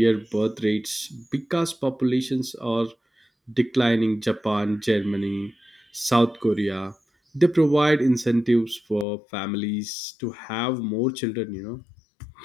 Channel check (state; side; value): drops out; right; at 9.1 s